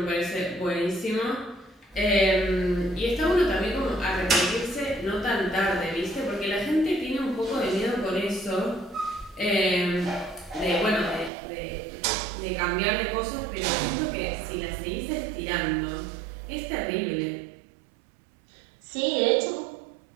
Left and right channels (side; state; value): left; drops out; at 11.3 s